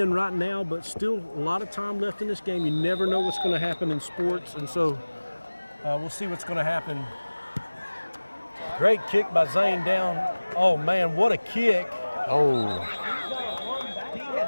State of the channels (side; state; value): both; inverted; correlation -1.00